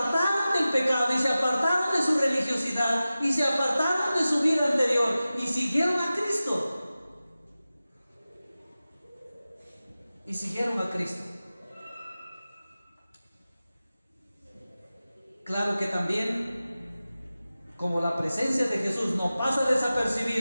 del pecado y se apartaron de su religiosidad y se apartaron de su vida anterior y siguieron a Cristo. Y siguieron a Cristo. Claro que también, como la presencia de Jesús no pasa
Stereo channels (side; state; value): both; inverted; correlation -0.95